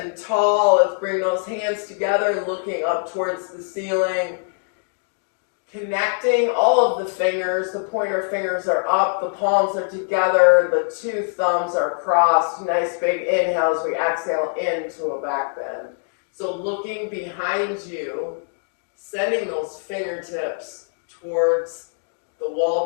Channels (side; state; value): right; silent; 61 dB below the other